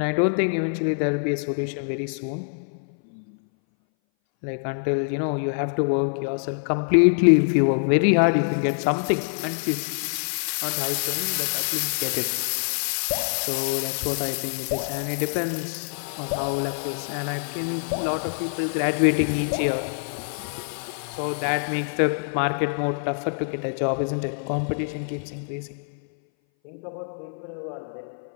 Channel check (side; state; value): right; silent; 60 dB below the other